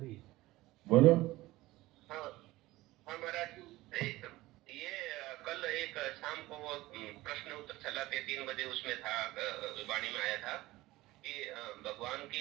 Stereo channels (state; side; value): quieter; left; 18.3 dB